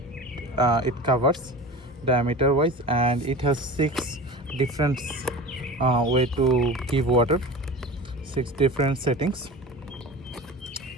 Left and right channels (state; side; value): normal; both; correlation 0.33